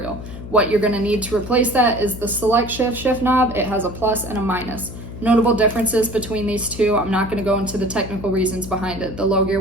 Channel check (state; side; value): noise; left; hum, 11 dB below the sound